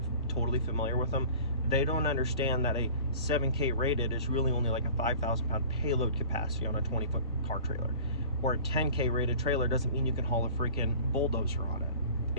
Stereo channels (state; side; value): inverted; both; correlation -0.44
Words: totally familiar with them. They don't understand that a 7K rated is really only like a 5,000 pound payload capacity on a 20-foot car trailer. Or a 10K rated trailer doesn't mean you can haul a freaking bulldozer on